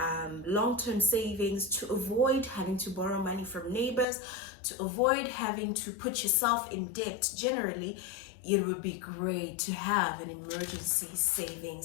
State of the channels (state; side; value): drops out; right; at 4.0 s